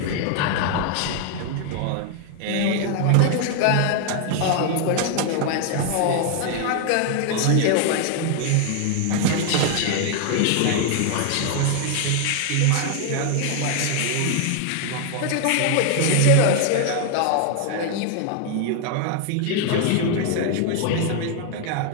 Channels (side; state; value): both; different; correlation 0.00